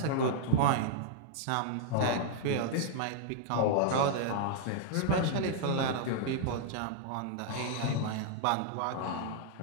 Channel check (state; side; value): different; both; correlation -0.01